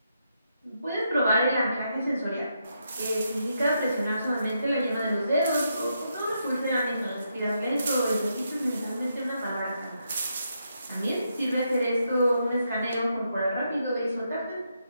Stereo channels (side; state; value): both; inverted; correlation -0.80